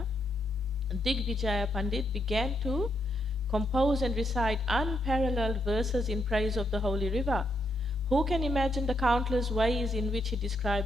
Digvijaya Pandit began to compose and recite unparalleled verses in praise of the holy river. Who can imagine the countless ways in which he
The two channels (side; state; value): both; normal; correlation 0.78